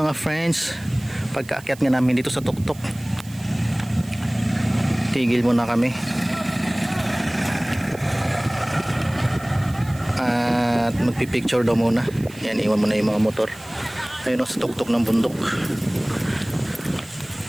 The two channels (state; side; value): noise; right; hiss, 21 dB below the sound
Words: friends, pagkaakyat nga namin dito sa tuktok, tigil muna kami at magpipicture daw muna. Yan, iwan muna yung mga motor. Ayun o, sa tuktok ng bundok.